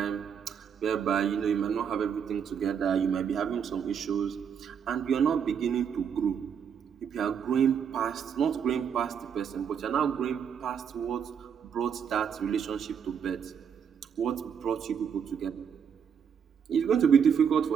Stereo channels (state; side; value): quieter; left; 7.5 dB